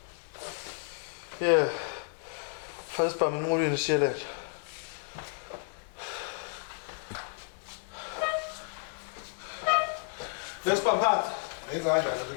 Yeah. Fast pa minqulweni siyelehle. Lesipamphata. Ngizanjani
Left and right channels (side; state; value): right; silent; 56 dB below the other